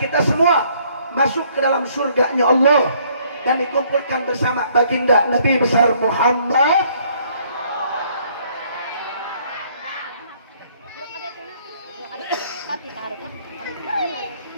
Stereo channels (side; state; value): both; inverted; correlation -0.63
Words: semua masuk ke dalam surganya Allah dan dikumpulkan bersama baginda Nabi besar Muhammad.